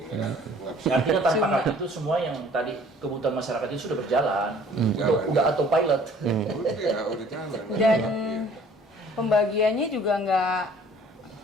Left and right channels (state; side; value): normal; both; correlation 0.54